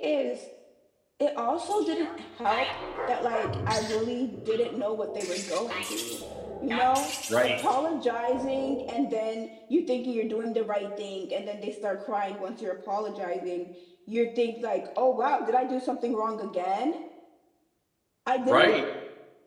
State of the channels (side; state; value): both; identical; correlation 1.00